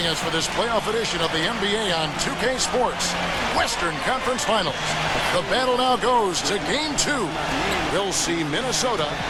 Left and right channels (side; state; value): both; identical; correlation 1.00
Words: us for this playoff edition of the NBA on 2K Sports Western Conference Finals. The battle now goes to Game 2. We'll see Minnesota